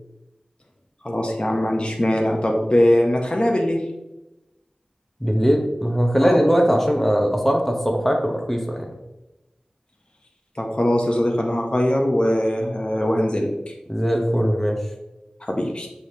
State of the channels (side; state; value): both; normal; correlation 0.98